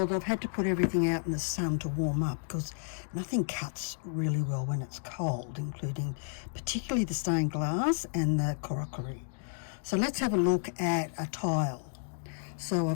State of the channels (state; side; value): silent; right; digital silence